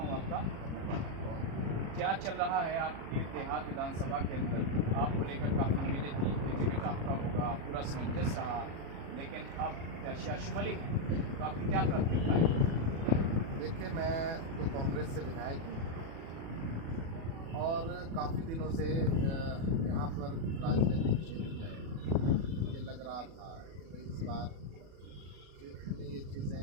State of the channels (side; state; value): left; late; 37 ms